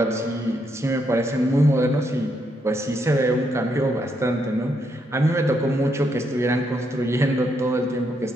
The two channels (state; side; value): normal; both; correlation 0.77